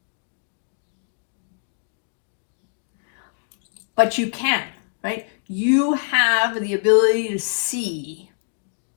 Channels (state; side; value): silent; right; digital silence